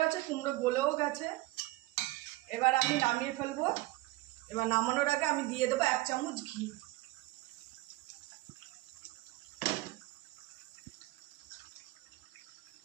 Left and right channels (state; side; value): quieter; left; 19.1 dB